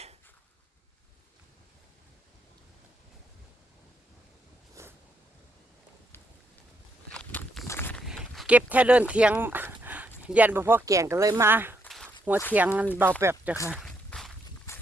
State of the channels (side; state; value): both; normal; correlation 0.76